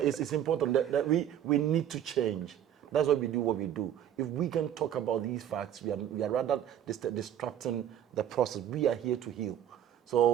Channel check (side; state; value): left; quieter; 10.3 dB